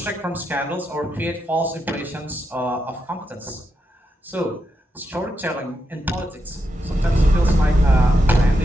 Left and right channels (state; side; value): normal; both; correlation 0.85